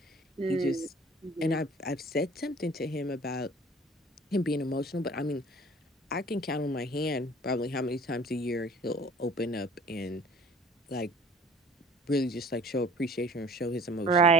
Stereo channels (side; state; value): both; normal; correlation 0.48